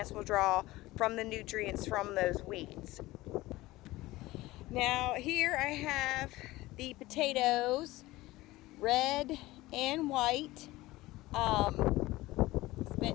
will draw from the nutrients from those weeds. Now here I have the potatoes, red and white.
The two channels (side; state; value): right; quieter; 18.6 dB